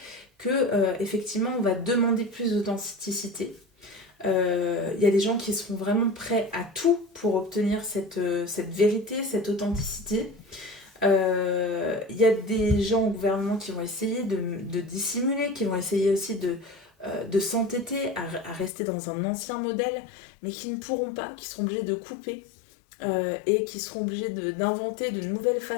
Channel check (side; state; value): right; drops out; at 18.7 s